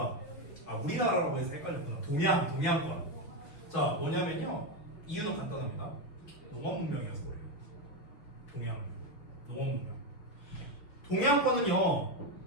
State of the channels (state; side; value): late; right; 5.9 ms